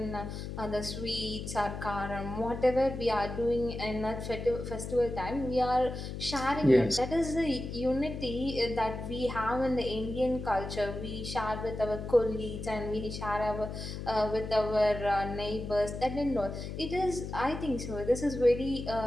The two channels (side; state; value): left; noise; hum, 7 dB below the sound